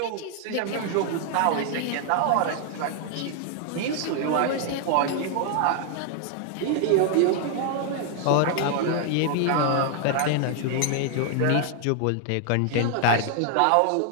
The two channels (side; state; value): both; different; correlation 0.00